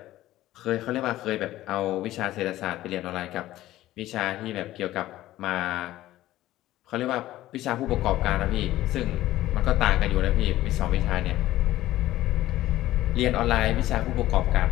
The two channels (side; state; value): right; quieter; 15.1 dB